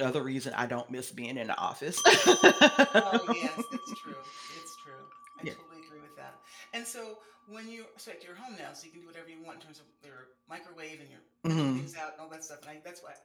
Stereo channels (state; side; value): identical; both; correlation 1.00